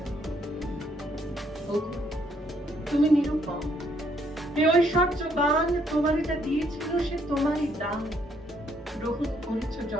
তুমি নিরূপম, এ ঐশ্বর্যবান, তোমারে যা দিয়েছিল সে তোমারই দান। গ্রহণ করেছ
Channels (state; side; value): normal; both; correlation 0.70